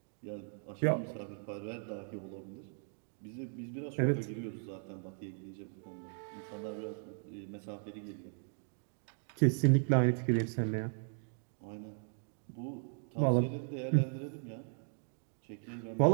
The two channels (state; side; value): silent; left; 53 dB below the other